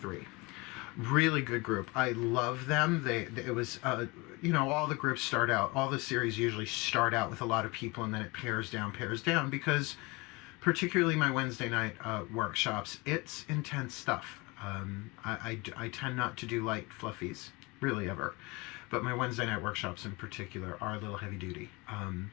Really good group. I love them. It was, you know, all the groups start out, all the series usually start out with a lot of people, and then it pairs down, because particularly my Wednesday night workshops, it's intense stuff. I tend not to do light fluffies, really ever. But my Wednesday night workshops in particular are a little heavy duty.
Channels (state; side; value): quieter; right; 25.4 dB